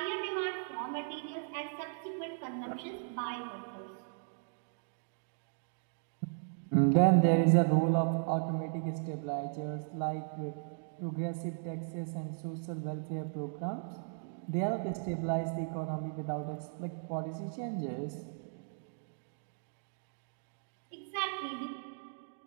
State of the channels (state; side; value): silent; left; digital silence